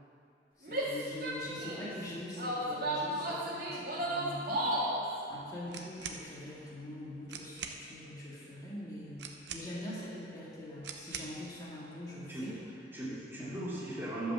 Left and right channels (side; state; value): both; normal; correlation 0.14